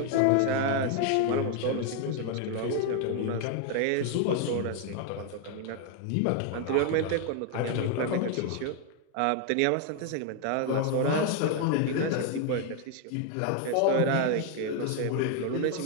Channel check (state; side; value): different; both; correlation 0.00